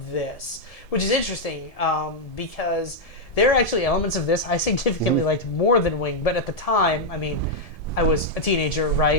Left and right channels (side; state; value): right; late; 1.7 ms